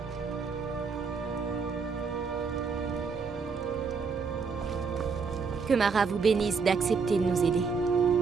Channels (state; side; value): quieter; left; 5.2 dB